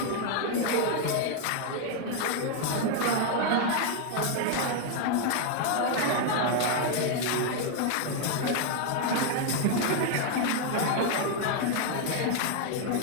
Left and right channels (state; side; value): different; both; correlation 0.00